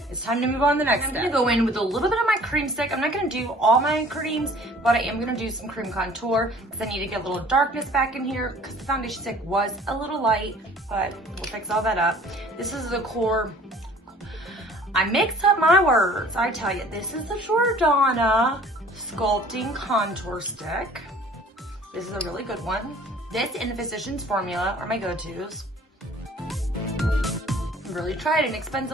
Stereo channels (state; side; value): normal; both; correlation 0.51